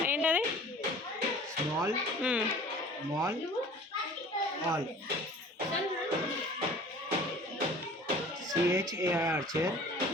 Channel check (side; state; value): both; normal; correlation 0.46